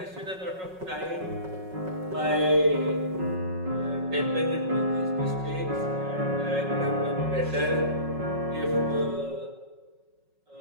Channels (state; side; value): late; left; 5.4 ms